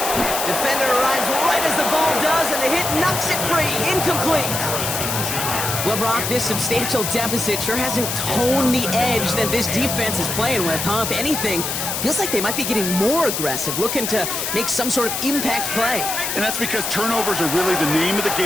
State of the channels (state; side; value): noise; left; hiss, 2 dB below the sound